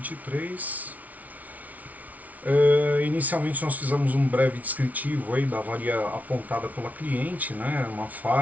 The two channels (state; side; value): late; left; 0.073 ms